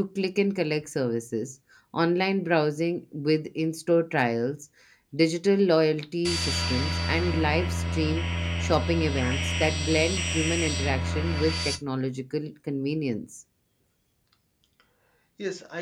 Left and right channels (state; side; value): identical; both; correlation 1.00